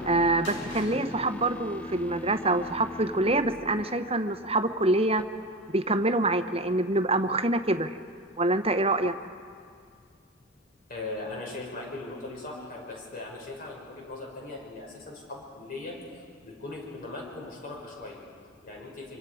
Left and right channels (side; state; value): both; normal; correlation 0.24